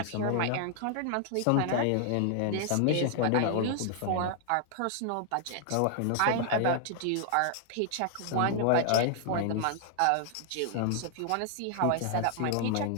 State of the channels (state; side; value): different; both; correlation 0.00